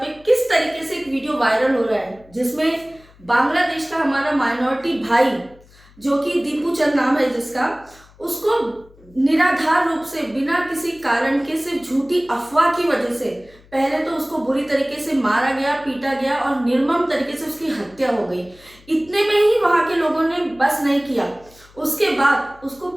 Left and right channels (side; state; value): left; noise; hum, 26 dB below the sound